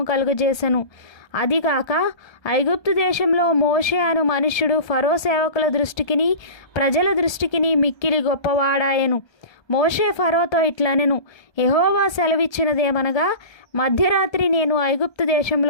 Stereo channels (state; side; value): late; right; 1.3 ms